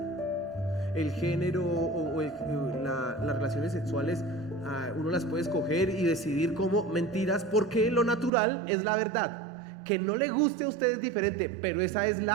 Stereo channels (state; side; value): drops out; left; at 8.3 s